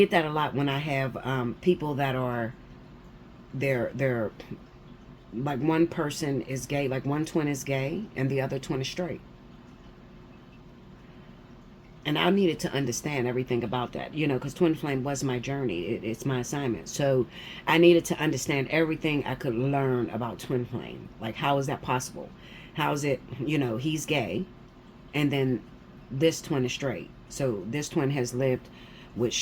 that a lot when I have people that are, they're like, one person is gay, like one twin is gay and the other twin is straight. And I needed to understand everything about that, you know, because twin flame was my journey. It's my assignment. So I needed to understand everything I could learn about twin flame. Like, how is that possible? How is it, you know, he's gay and then this twin is straight. So this twin has lived with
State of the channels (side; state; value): both; identical; correlation 1.00